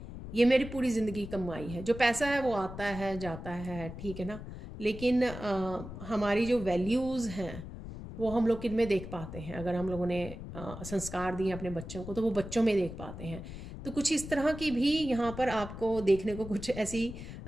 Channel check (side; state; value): left; noise; rumble, 10 dB below the sound